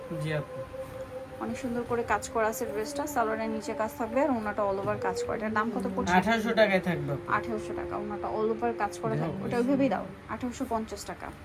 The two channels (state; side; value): identical; both; correlation 1.00